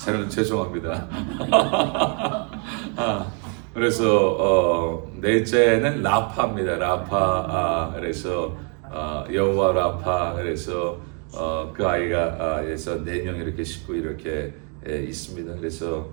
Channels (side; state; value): left; quieter; 38.0 dB